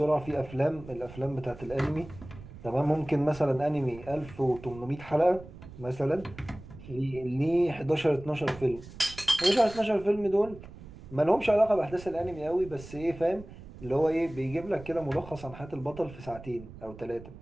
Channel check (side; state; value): right; noise; rumble, 16 dB below the sound